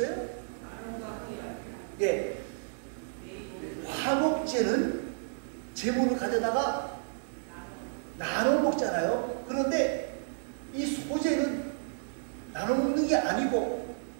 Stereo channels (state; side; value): silent; left; digital silence